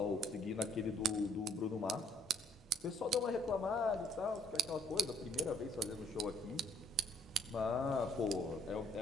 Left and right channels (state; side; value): normal; both; correlation 0.64